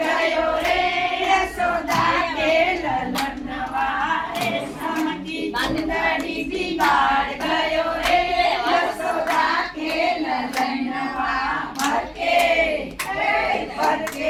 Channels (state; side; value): identical; both; correlation 1.00